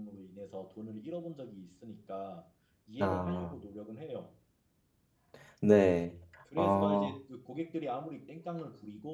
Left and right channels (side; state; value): both; identical; correlation 1.00